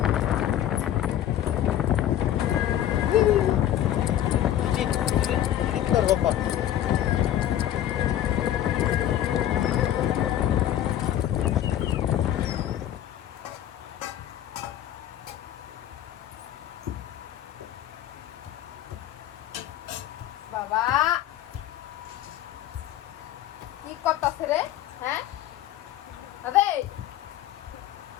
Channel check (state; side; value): quieter; right; 11.8 dB